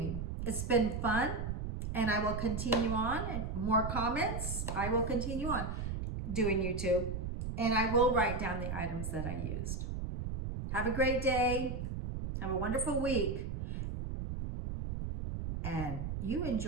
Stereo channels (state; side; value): noise; right; rumble, 4 dB below the sound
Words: it's been fun, and I will continue on. And more comments, I will continue on doing YouTube, and I will write down the items that I used. Have a great day. Have a wonderful week. And you